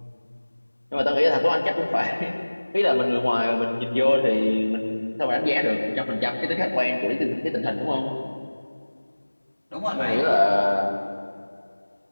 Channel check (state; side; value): inverted; both; correlation -1.00